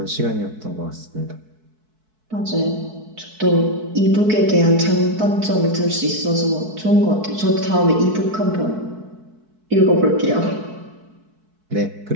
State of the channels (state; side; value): late; left; 4.6 ms